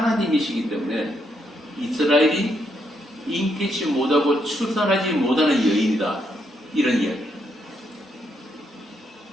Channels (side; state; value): both; normal; correlation 0.77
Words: 때문에 이스라엘이 잉태치 못하고 출산하지 못하는 여인이다. 이런 이야기.